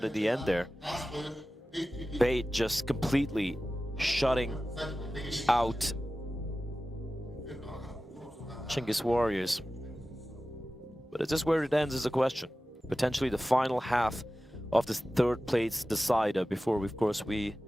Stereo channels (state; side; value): normal; both; correlation 0.95